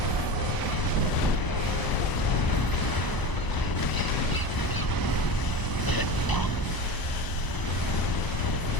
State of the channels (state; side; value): late; right; 1.0 ms